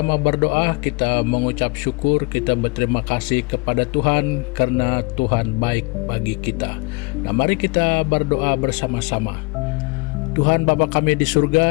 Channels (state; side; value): quieter; right; 28.7 dB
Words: berdoa, kita mengucap syukur, kita berterima kasih kepada Tuhan karena Tuhan baik bagi kita. Nah, mari kita berdoa bersama-sama. Tuhan Bapa kami di